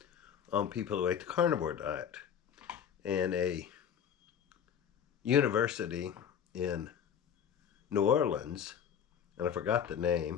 on people who ate the carnivore diet. And a university in New Orleans, and I forgot the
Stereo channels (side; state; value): right; quieter; 8.3 dB